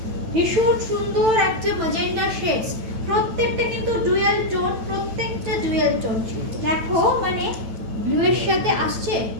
ভীষণ সুন্দর একটা ম্যাজেন্টা শেডস, প্রত্যেকটা কিন্তু ডুয়াল টোন, প্রত্যেকটা ডুয়াল টোন। দেখো মানে ব্লু এর সাথে আসছে,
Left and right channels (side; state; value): left; late; 9.0 ms